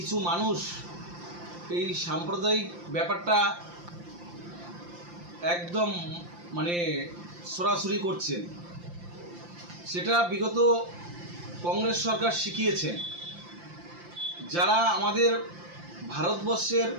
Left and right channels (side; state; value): left; late; 5.8 ms